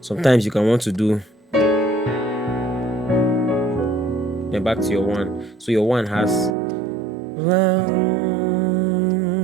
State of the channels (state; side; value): drops out; left; at 6.6 s